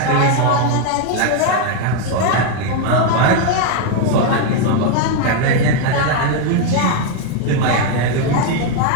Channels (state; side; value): different; both; correlation 0.01